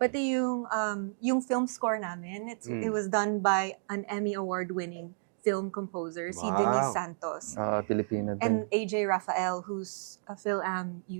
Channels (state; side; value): silent; left; digital silence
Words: Pati yung film score namin, it was done by an Emmy Award-winning film composer, si Denise Santos. Pilipino din. And AJ Rafael, who's a Phil-Am